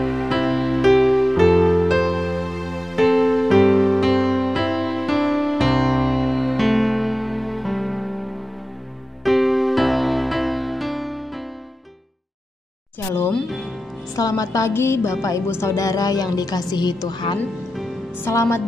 selamat pagi Bapak Ibu Saudara yang dikasihi Tuhan. Selamat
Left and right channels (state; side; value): normal; both; correlation 0.94